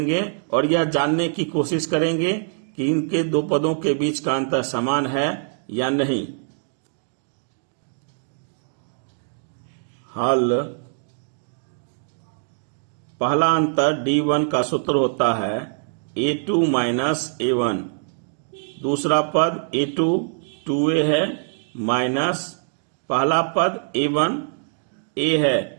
और यह जानने की कोशिश करेंगे कि इनके 2 पदों के बीच का अंतर समान है या नहीं। हल। पहला अंतर D1 का सूत्र होता है A2 माइनस A1। दूसरा पद A2 2A है माइनस पहला पद A1 A है।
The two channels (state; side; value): silent; left; digital silence